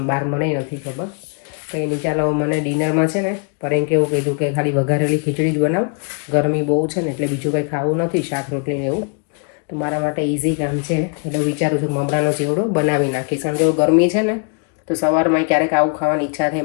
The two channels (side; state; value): right; quieter; 39.7 dB